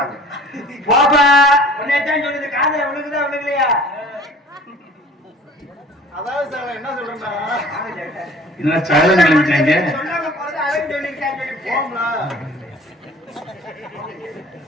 போப்பா உன்னைத்தான் சொல்லுது காதல உனக்குதான் உனக்குலையா அதாவது சார் என்ன சொல்றேன்னா சொல்லாம போறது அவன் சொல்லிருக்கான்னு சொல்லி போம்ல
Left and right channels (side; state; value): both; normal; correlation 0.48